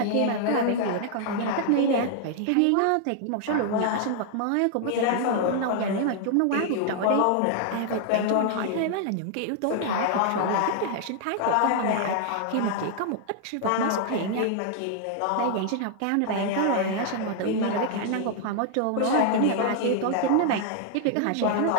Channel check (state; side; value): different; both; correlation 0.00